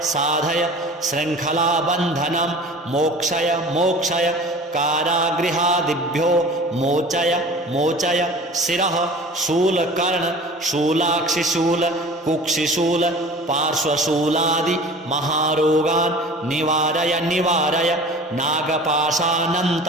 साधय शृङ्खलाबन्धनं मोक्षय मोक्षय कारागृहादिभ्यो मोचय मोचय शिरः शूलकर्ण शूलाक्षिशूल कुक्षिशूल पार्श्वशूलादि महारोगान् निवारय निवारय नागपाशानन्त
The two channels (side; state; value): both; normal; correlation 0.41